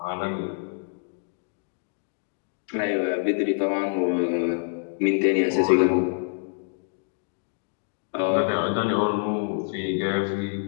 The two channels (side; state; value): right; silent; digital silence